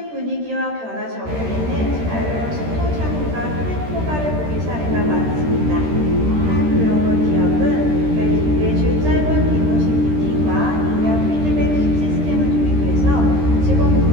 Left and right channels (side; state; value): left; late; 13 ms